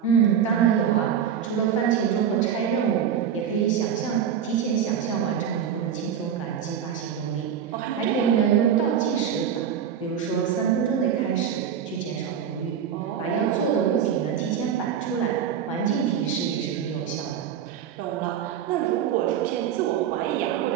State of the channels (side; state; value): left; quieter; 8.4 dB